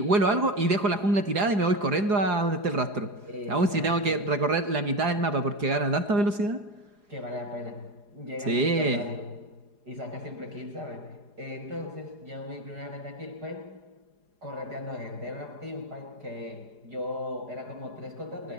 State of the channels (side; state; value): left; late; 4.8 ms